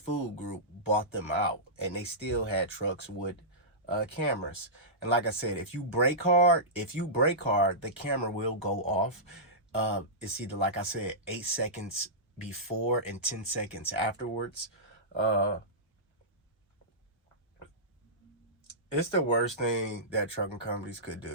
Group bought them out, and they still had trucks with cameras. And like I said, if you brake hard, the camera will go off. It's either, like I said, 8 seconds before and 10 seconds afterwards. It's the worst thing that trucking companies could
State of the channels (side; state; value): both; normal; correlation -0.16